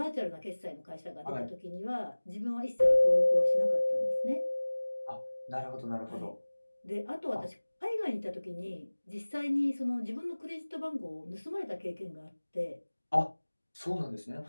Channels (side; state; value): both; inverted; correlation -1.00